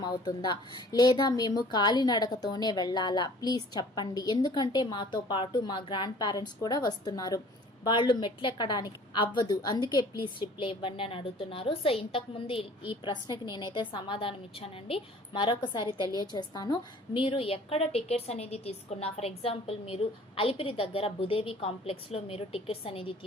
అవుతుందా లేదా మేము కాలినడకతోనే వెళ్ళాలా? ప్లీజ్ చెప్పండి. ఎందుకంటే మాతో పాటు మా గ్రాండ్ పేరెంట్స్ కూడా వస్తున్నారు, వాళ్ళు మెట్లు ఎక్కడానికి అవ్వదు, అందుకే ప్లీజ్ రిప్లై ఇవ్వండి అని అడుగుతున్నారు. సో ఇంతకుముందు ఈ ప్రశ్నకి నేనైతే సమాధానం ఇచ్చానండి, మరొకసారి తెలియజేస్తాను. మీరు ఎక్కడ టికెట్స్ అనేది తీసుకున్నా, ఫర్ ఎగ్జాంపుల్ మీరు అలిపిరి దగ్గర భూదేవి కాంప్లెక్స్లో మీరు టికెట్స్ అనేది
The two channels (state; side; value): normal; both; correlation 0.50